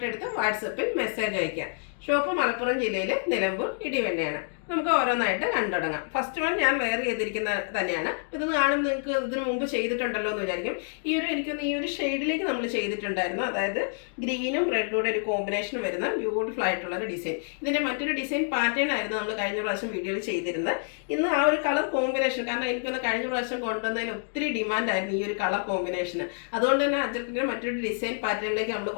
എടുത്ത് വാട്സപ്പിൽ മെസ്സേജ് അയക്കാം. ഷോപ്പ് മലപ്പുറം ജില്ലയിലെ നിലമ്പൂർ ഇടിവെണ്ണയാണ്. നമുക്ക് ഓരോന്നായിട്ട് കണ്ടുടങ്ങാം. ഫസ്റ്റ് വൺ ഞാൻ വെയർ ചെയ്തിരിക്കുന്ന തന്നെയാണ്. ഇതൊന്ന് കാണുമ്പോൾ നിങ്ങൾക്ക് ഇതിന് മുമ്പ് ചെയ്തിട്ടുണ്ടല്ലോ എന്ന് വിചാരിക്കും. എനിക്കൊന്ന് ഈ ഒരു ഷെയ്ഡിലേക്ക് നമ്മൾ ചെയ്തിട്ടുണ്ടായിരുന്നു. അതായത് ഗ്രീനും റെഡും ഒരു കോമ്പിനേഷൻ വരുന്ന ബ്യൂട്ടിഫുൾ ആയിട്ടുള്ള ഒരു ഡിസൈൻ. ഇതിൻ്റെ മറ്റൊരു ഡിസൈൻ പാറ്റേൺ ആയിരുന്നു നമ്മൾ കഴിഞ്ഞ പ്രാവശ്യം വീഡിയോയിൽ ചെയ്തിരുന്നത്. ഇന്ന് ആ ഒരു കളർ കോമ്പിനേഷൻ, കാരണം എനിക്കൊന്ന് കഴിഞ്ഞ പ്രാവശ്യം കൊണ്ടുവന്നതിന് ഒത്തിരി ഡിമാൻഡായിരുന്നു ഈ ഒരു കളർ കോമ്പിനേഷന്. അതുകൊണ്ട് തന്നെ അജർക്കിൻ്റെ മറ്റൊരു ഡിസൈൻ പാറ്റേണിലേക്ക് നമ്മൾ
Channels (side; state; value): right; silent; digital silence